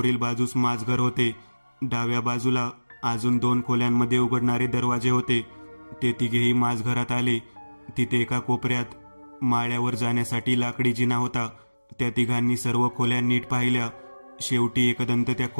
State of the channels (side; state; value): both; inverted; correlation -1.00